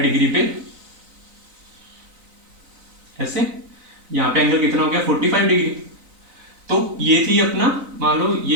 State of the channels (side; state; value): left; late; 3.9 ms